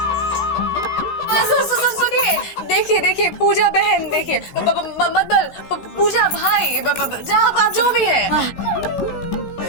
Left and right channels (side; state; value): right; late; 16 ms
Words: सुनिए, देखिए देखिए पूजा बहन, देखिए मतलब पूजा भाई, आप जो भी है,